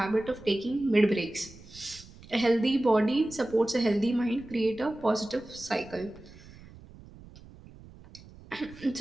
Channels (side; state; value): right; noise; rumble, 20 dB below the sound